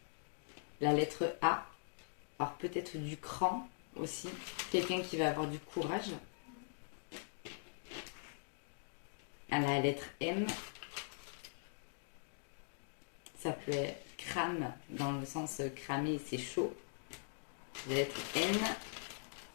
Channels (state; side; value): silent; right; digital silence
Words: La lettre A. Alors peut-être du cran aussi. Quelqu'un qui va avoir du courage. À la lettre M. Ça peut être crame, dans le sens cramer, c'est chaud. La lettre N.